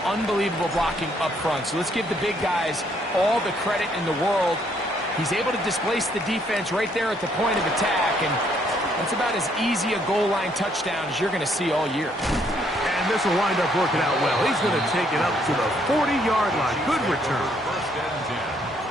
unbelievable blocking up front. So let's give the big guys all the credit in the world. He's able to displace the defense right there at the point of attack, and that's about as easy a goal line touchdown as you're going to see all year. And this will wind up working out well. He's going to take it up to the 40-yard line. Good return. First and 10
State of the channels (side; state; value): both; normal; correlation 0.69